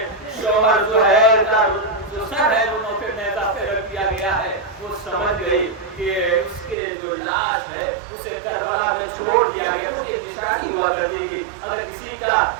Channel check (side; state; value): left; drops out; at 6.8 s